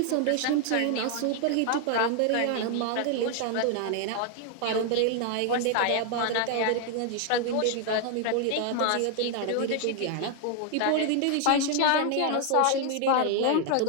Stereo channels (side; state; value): both; different; correlation 0.00